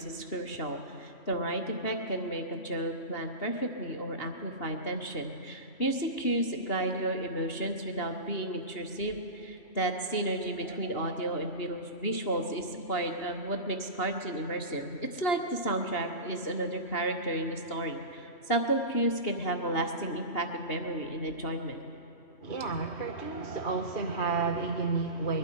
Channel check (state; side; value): late; right; 2.8 ms